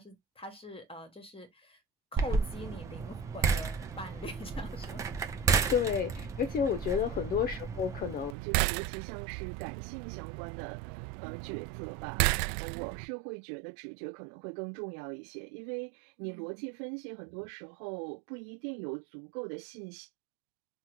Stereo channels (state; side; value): drops out; left; at 8.3 s